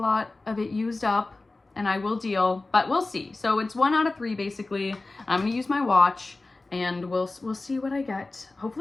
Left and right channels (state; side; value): quieter; right; 3.2 dB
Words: of it used up, and I will deal, but we'll see. So it's 1 out of 3 basically. I'm gonna use my watch and we'll see what I get.